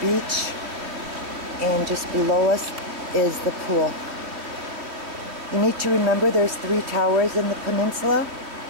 and just below us is the pool. You need to remember there's 3 towers in the peninsula,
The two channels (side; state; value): left; late; 3.0 ms